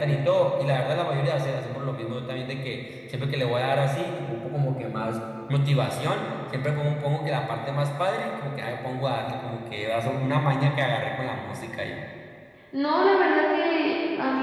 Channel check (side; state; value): both; identical; correlation 1.00